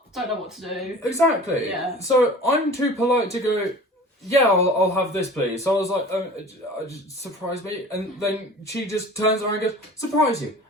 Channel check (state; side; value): normal; both; correlation 0.42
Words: don't know what to do. Exactly. Yeah. So I'm too polite to go, yeah, I'll have this, please. So I was like, surprise me. And then she just turns around and goes, surprise you.